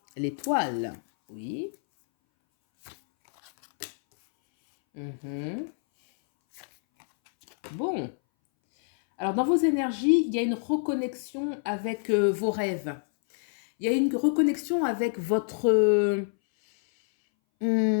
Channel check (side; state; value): right; silent; 60 dB below the other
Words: L'étoile, oui. Bon. Alors, dans vos énergies, il y a une reconnexion avec vos rêves. Il y a une reconnexion avec votre...